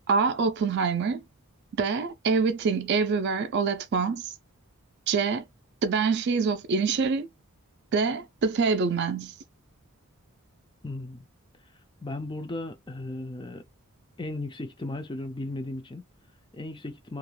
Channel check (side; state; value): left; quieter; 4.3 dB